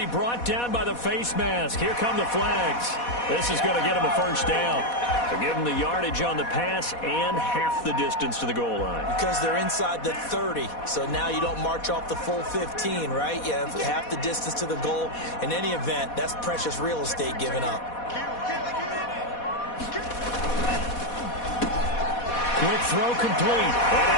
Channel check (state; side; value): late; right; 4.1 ms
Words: brought down by the face mask. Here come the flags. This is going to get him a first down. To give him the yardage on the pass and half the distance to the goal line. Because they're inside the 30, so now you don't march off the full 15, right? You have half the distance to the goal. In any event, that's precious real estate given up. Quick throw complete. And